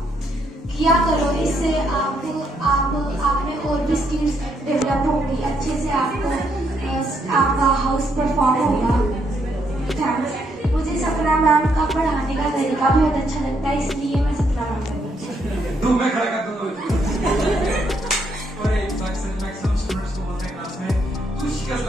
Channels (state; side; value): normal; both; correlation 0.74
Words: किया करो, इससे आप में और भी स्किल्स डेवलप होंगी, अच्छे से आपका हाउस परफॉर्म होगा। थैंक्स। मुझे सपना मैम का पढ़ाने का तरीका बहुत अच्छा लगता है, इसलिए मैं सपना मैम का में खड़ा कर दो। और एक मैक्सिमम स्टूडेंट्स को बोलते हैं क्लास में तू शिकस्त